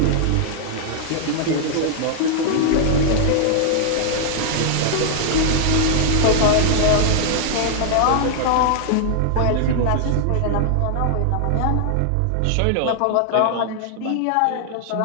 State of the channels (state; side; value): different; both; correlation -0.01